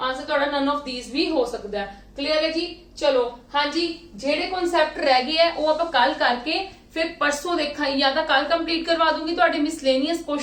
ਤੁਹਾਡਾ ਨਨ ਆਫ ਥੀਸ ਵੀ ਹੋ ਸਕਦਾ ਹੈ। ਕਲੀਅਰ ਹੈ ਜੀ। ਚਲੋ ਹਾਂਜੀ ਜਿਹੜੇ ਕਨਸੈਪਟ ਰਹਿ ਗਏ ਆ ਉਹ ਆਪਾਂ ਕੱਲ ਕਰਕੇ ਫਿਰ ਪਰਸੋਂ ਦੇਖਾਂਗੇ, ਜਾਂ ਤਾਂ ਕੱਲ ਕੰਪਲੀਟ ਕਰਵਾ ਦੂੰਗੀ ਤੁਹਾਡੇ ਮਿਸਲੇਨੀਅਸ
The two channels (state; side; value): identical; both; correlation 1.00